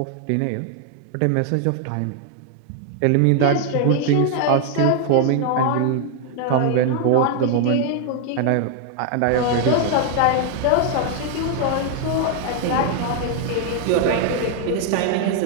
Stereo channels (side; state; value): both; different; correlation 0.00